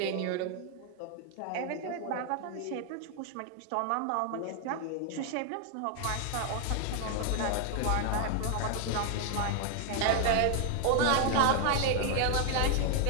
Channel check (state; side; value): different; both; correlation 0.00